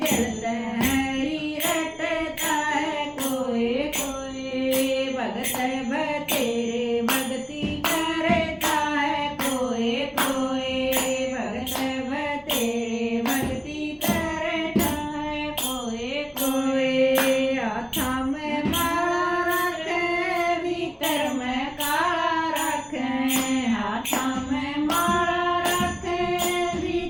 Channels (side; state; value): both; identical; correlation 1.00